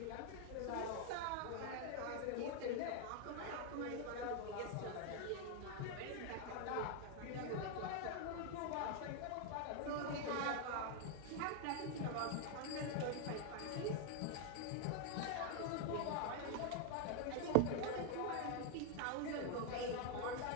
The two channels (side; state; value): both; different; correlation 0.00